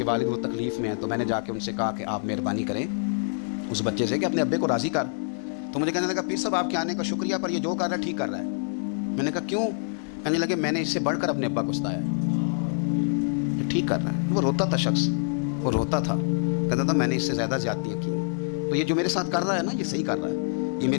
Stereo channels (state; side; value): silent; right; digital silence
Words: والد وہ تکلیف میں ہیں. تو میں نے جا کے ان سے کہا کہ آپ مہربانی کریں اس بچے سے کہ اپنے ابے کو راضی کر. تو مجھے کہنے لگا پیر صاحب آپ کے آنے کا شکریہ, پر یہ جو کر رہا ہے ٹھیک کر رہا ہے. میں نے کہا کیوں؟ کہنے لگے میں نے اس سے بڑھ کر اپنے ابا کو ستایا ہے، یہ ٹھیک کر رہا ہے۔ وہ روتا تھا شخص، وہ روتا تھا، کہتا تھا میں نے اس سے زیادہ زیادتیاں کی ہیں، تو یہ جو میرے ساتھ کر رہا ہے نا یہ صحیح کر رہا ہے، یہ